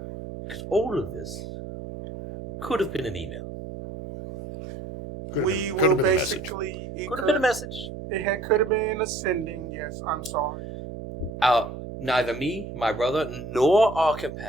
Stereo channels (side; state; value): right; noise; hum, 9 dB below the sound